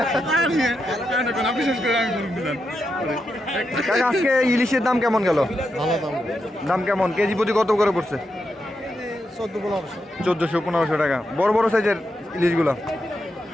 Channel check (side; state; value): both; normal; correlation 0.85